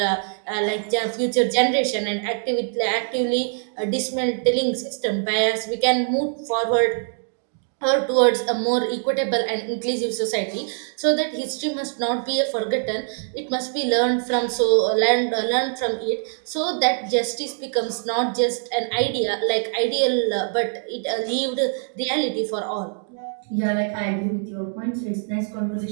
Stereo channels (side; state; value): left; silent; digital silence